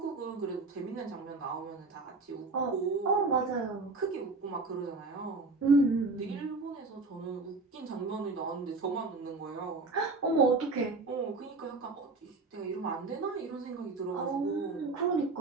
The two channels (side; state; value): left; quieter; 3.6 dB